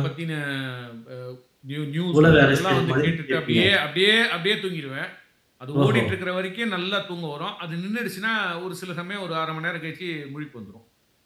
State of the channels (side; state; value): both; identical; correlation 1.00